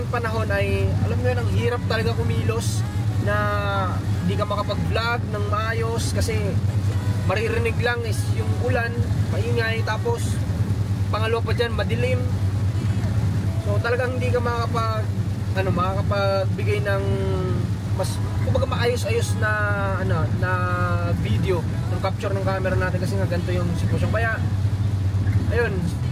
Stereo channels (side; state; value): both; identical; correlation 1.00